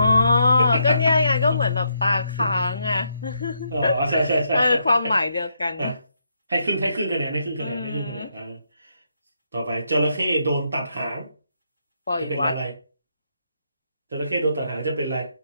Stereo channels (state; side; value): inverted; both; correlation -0.77